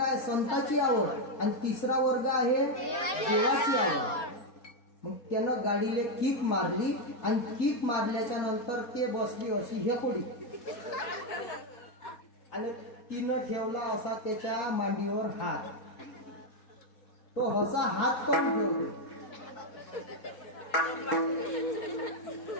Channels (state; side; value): late; right; 4.2 ms